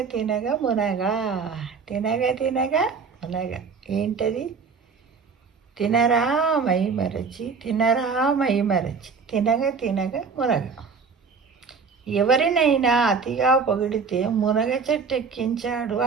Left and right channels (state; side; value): quieter; left; 5.3 dB